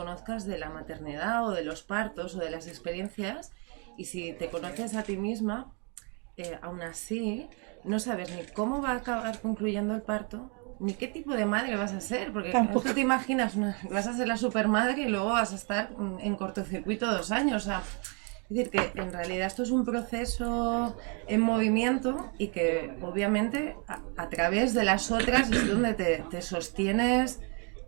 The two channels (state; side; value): quieter; left; 35.9 dB